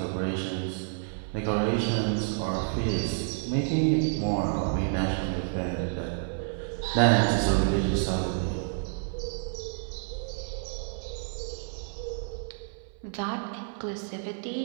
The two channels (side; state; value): left; silent; 58 dB below the other